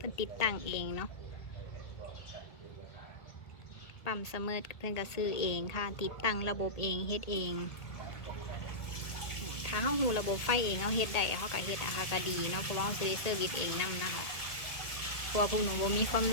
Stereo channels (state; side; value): late; right; 1.8 ms